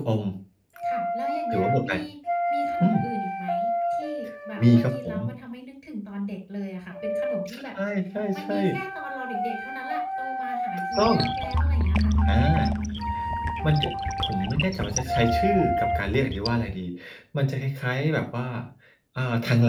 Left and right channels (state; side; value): identical; both; correlation 1.00